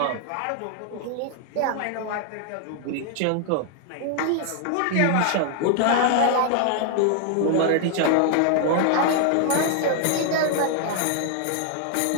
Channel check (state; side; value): different; both; correlation 0.00